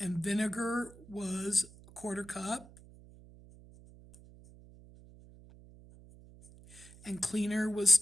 vinegar was a 1/4 cup, and cleaner was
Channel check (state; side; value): noise; right; hum, 21 dB below the sound